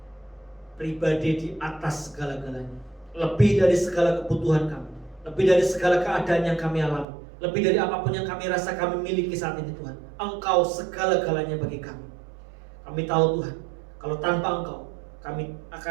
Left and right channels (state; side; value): drops out; left; at 7.1 s